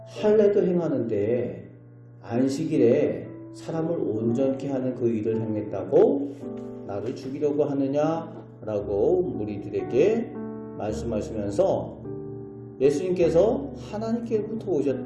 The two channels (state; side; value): identical; both; correlation 1.00